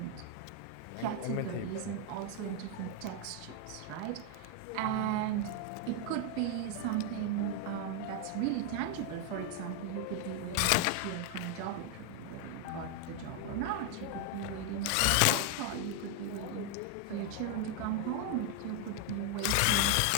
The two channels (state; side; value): different; both; correlation 0.01